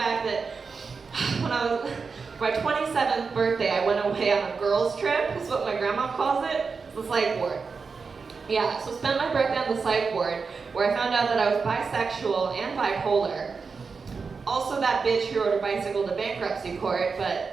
that when I was, my 27th birthday, I went away on a girls' trip, is what my grandma calls it. It's the psych ward. Yeah, so spent my birthday on the psych ward, where I found out that I was bisexual and bipolar. Also that bitch who rode a bicycle to bankruptcy court,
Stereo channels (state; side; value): quieter; left; 5.0 dB